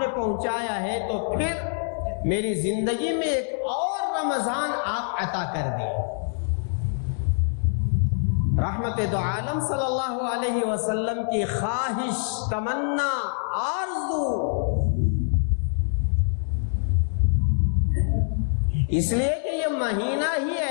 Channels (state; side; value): silent; right; digital silence